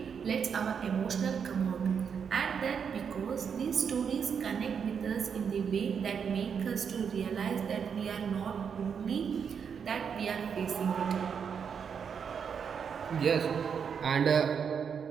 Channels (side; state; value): left; quieter; 6.9 dB